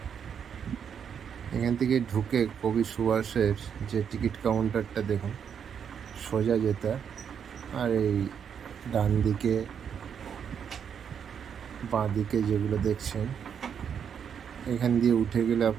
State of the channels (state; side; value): quieter; left; 7.7 dB